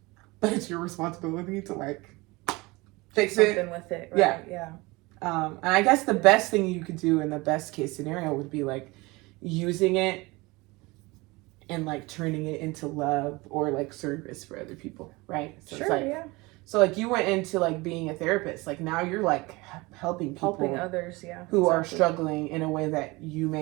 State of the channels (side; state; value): left; quieter; 23.4 dB